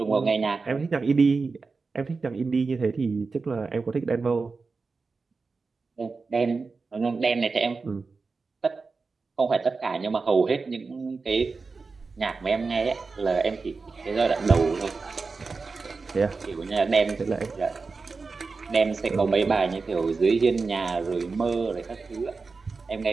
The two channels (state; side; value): quieter; left; 4.3 dB